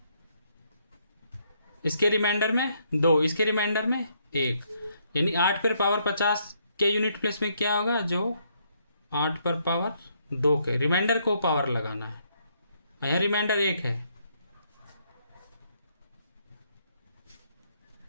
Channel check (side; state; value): both; inverted; correlation -0.72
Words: इसके रिमाइंडर में 2, इसके रिमाइंडर में 1, यानी 8 पर पावर 50 के यूनिट प्लेस में क्या होगा, जो 8 पर पावर 2 के रिमाइंडर को पावर लगाना है। यहाँ रिमाइंडर 1 है,